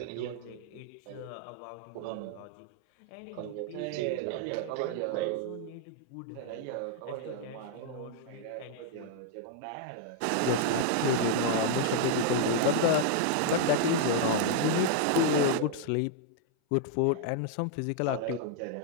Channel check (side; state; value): both; different; correlation -0.01